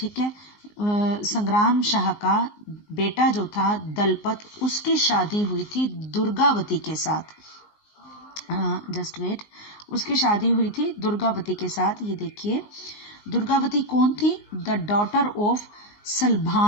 है। संग्राम शाह का बेटा जो था दलपत, उसकी शादी हुई थी दुर्गावती के साथ, जस्ट वेट, उसकी शादी हुई थी दुर्गावती के साथ। ये देखिए दुर्गावती कौन थी, द डॉटर ऑफ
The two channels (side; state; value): right; late; 19 ms